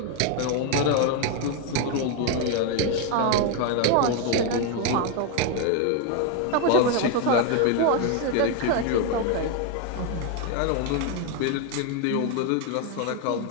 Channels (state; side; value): different; both; correlation 0.01